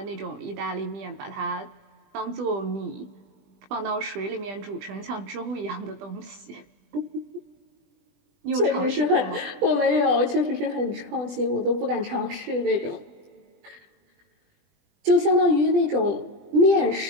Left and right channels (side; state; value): left; late; 20 ms